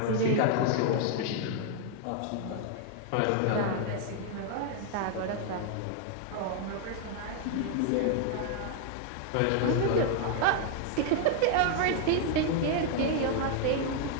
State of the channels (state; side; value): different; both; correlation 0.00